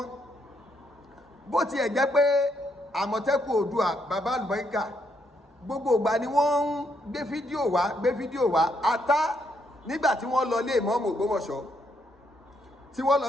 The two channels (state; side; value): normal; both; correlation 0.75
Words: bó tiẹ̀ jẹ́ pé Àmọ̀tẹ́kùn Oòduà bàbá àlùbáríkà gbogbo ìgbà ni wọ́n ń gbé fídíò wá ata nígbà tí wọ́n lọ lé ìmáàmù Ògbómọ̀ṣọ́ tí wọ́n lọ